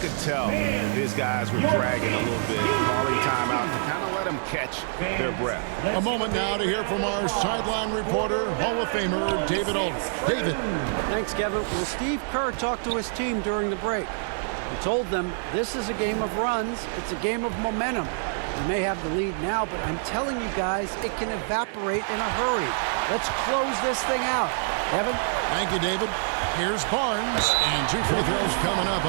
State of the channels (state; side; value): silent; left; 59 dB below the other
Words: tell his guys were dragging a little bit, calling timeout to kind of let them catch their breath. A moment now to hear from our sideline reporter, Hall of Famer David Aldridge. David. Thanks, Kevin. Well, Steve Kerr talked to his team during the break. He told them this is a game of runs. It's a game of momentum. We may have the lead now, but I'm telling you guys, it can evaporate in a hurry. Let's close this thing out. Kevin? Thank you, David. Here's Barnes, and 2 free throws coming up,